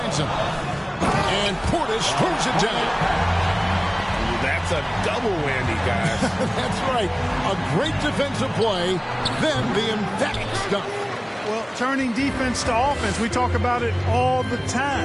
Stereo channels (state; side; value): identical; both; correlation 1.00